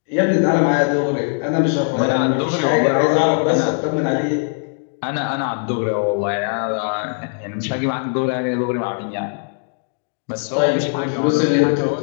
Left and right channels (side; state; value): right; silent; 65 dB below the other